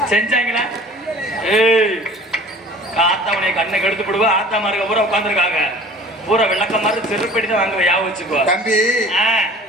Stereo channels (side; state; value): both; normal; correlation 0.46